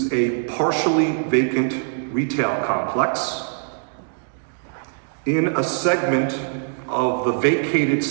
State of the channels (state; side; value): silent; left; digital silence